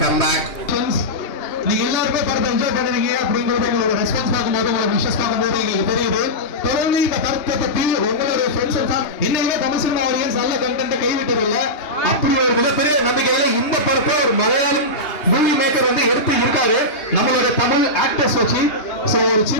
கம்பேக். நீங்க எல்லாருமே படத்தை என்ஜாய் பண்ணுவீங்க அப்படிங்கறது உங்களோட ரெஸ்பான்ஸ் பார்க்கும்போது, உங்களோட விஷஸ் பார்க்கும்போது எங்களுக்கு தெரியுது. தொடர்ந்து இந்த படத்தை பத்தி உங்களுடைய ஃப்ரெண்ட்ஸ் எல்லாம் இன்னைக்குமே தமிழ் சினிமா ஆடியன்ஸ் நல்ல கண்டென்ட்டை கைவிட்டதில்லை. அப்படி ஒரு மிகப்பெரிய நம்பிக்கையில இந்த படத்தை ஒரு மலையாளம் மூவி மேக்கர் வந்து எடுத்து இருக்காரு நம்மளோட தமிழ் ஆக்டர்ஸ் வச்சு. சோ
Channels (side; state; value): right; late; 2.8 ms